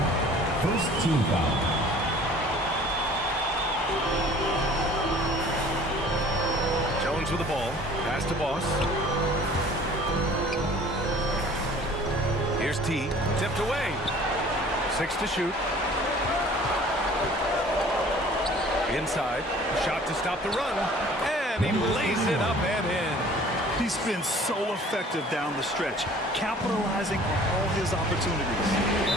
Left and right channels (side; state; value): both; normal; correlation 0.50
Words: First team foul. Jones with the ball. Pass to Boss. Here's T. Tipped away. 6 to shoot. Inside. Shot to stop the run. And he lays it up and in. He's been so effective down the stretch, capitalizing on all his opportunities.